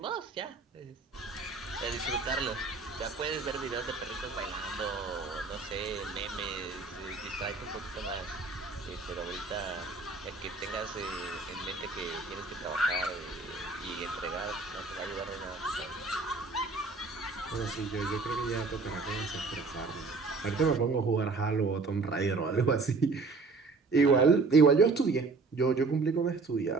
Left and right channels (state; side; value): quieter; left; 4.0 dB